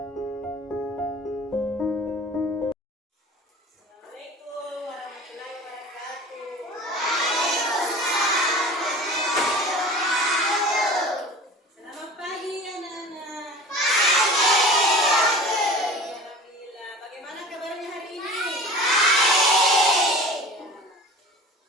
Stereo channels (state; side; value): normal; both; correlation 0.39